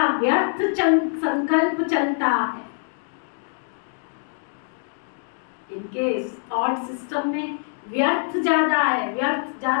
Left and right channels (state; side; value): silent; right; digital silence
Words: व्यर्थ संकल्प चलता है, इनके थॉट सिस्टम में व्यर्थ ज्यादा है, व्यर्थ